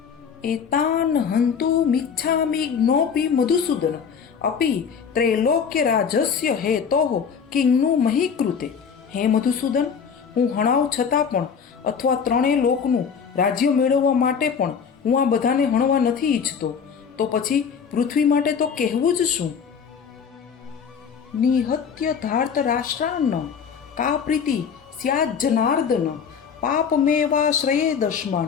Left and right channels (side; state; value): right; quieter; 6.6 dB